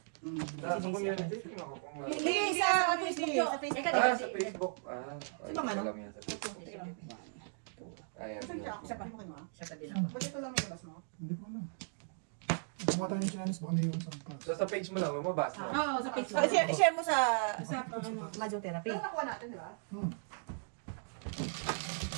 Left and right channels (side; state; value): left; silent; digital silence